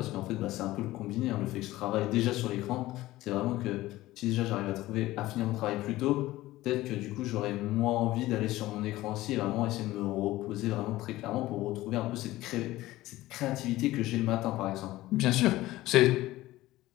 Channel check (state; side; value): quieter; right; 17.0 dB